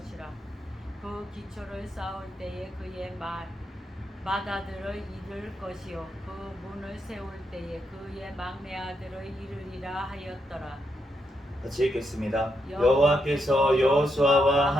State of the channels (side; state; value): both; normal; correlation 0.81